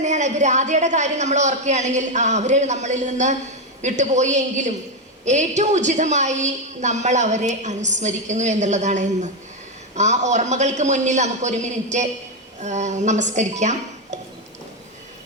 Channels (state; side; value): normal; both; correlation 0.07